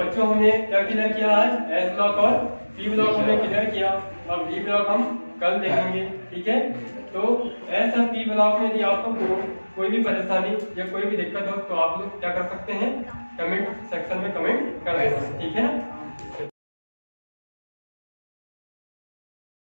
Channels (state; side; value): inverted; both; correlation -1.00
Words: हमने क्या क्लियर किया आज, एस ब्लॉक और पी ब्लॉक हमने क्लियर किया। अब डी ब्लॉक हम कल देखेंगे, ठीक है। तो एस और पी ब्लॉक में यदि आपको कोई भी परेशानी या कोई भी दिक्कत हो तो आप लोग क्या कर सकते हैं, कमेंट सेक्शन में कमेंट कर देना, ठीक है ना।